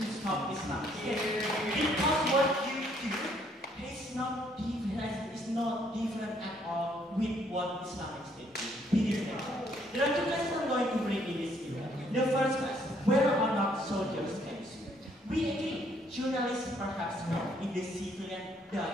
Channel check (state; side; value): normal; both; correlation 0.67